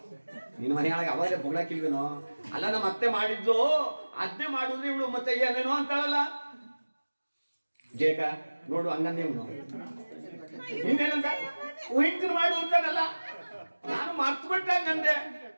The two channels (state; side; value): inverted; both; correlation -1.00